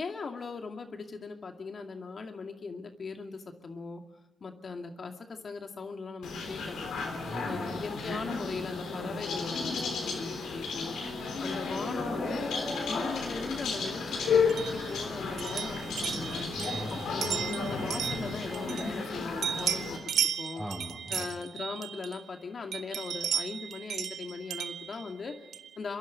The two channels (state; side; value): normal; both; correlation 0.75